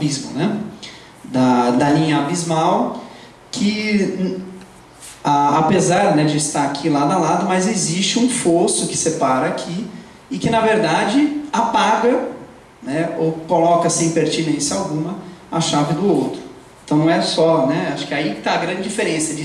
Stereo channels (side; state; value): both; identical; correlation 1.00